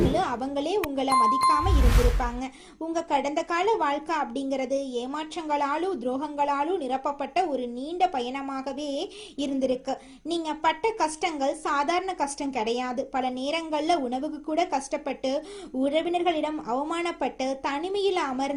அவங்களே உங்களை மதிக்காம இருந்திருப்பாங்க. உங்க கடந்த கால வாழ்க்கை அப்படிங்கிறது ஏமாற்றங்களாலும் துரோகங்களாலும் நிரப்பப்பட்ட ஒரு நீண்ட பயணமாகவே இருந்திருக்கு. நீங்க பட்ட கஷ்டங்கள் சாதாரண கஷ்டம் கிடையாது. பல நேரங்கள்ல உணவுக்கு கூட கஷ்டப்பட்டு, உறவினர்களிடம் அவமானப்பட்டு, தனிமையில்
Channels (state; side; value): identical; both; correlation 1.00